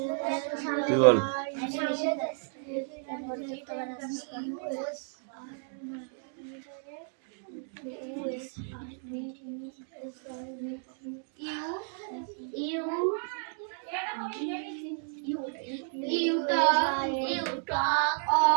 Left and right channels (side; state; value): left; silent; 56 dB below the other